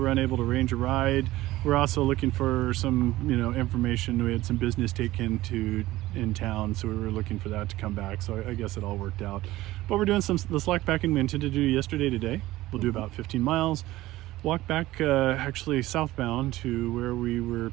unable to arrange a ride. We're also looking for some, information. We had some business taken to in town, so we were looking for that to come back. So I guess it all worked out. But we're doing the slack packing we intended to do yesterday today. We'll do about 15 miles. Walk back actually southbound to where we were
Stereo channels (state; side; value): quieter; left; 17.0 dB